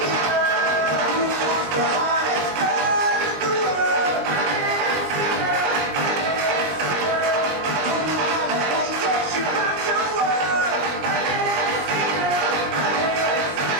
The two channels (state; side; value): late; left; 20 ms